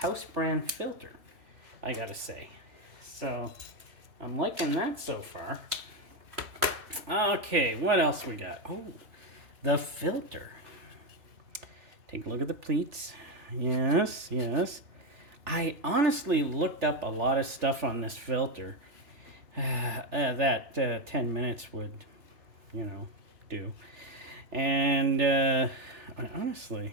brand filter, I gotta say. So I'm liking that so far. Okay, what else we got? Oh, the filter. Take a look at the pleats. Yes, yes. I honestly looked up a lot of stuff on this filter that 10 minutes would, do. And I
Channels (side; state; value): left; late; 3.4 ms